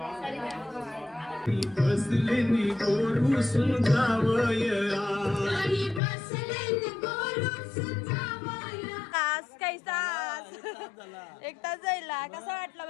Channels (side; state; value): right; drops out; at 6.0 s